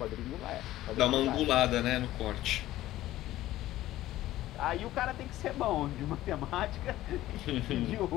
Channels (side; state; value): right; quieter; 15.1 dB